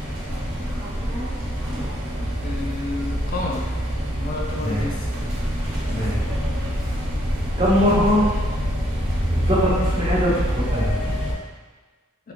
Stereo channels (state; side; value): normal; both; correlation 0.72